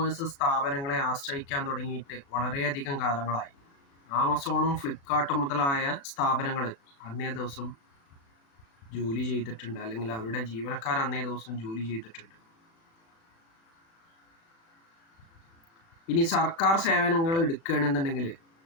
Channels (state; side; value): late; right; 36 ms